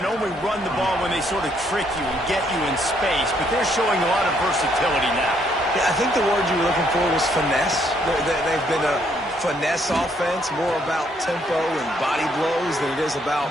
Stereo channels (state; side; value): normal; both; correlation 0.70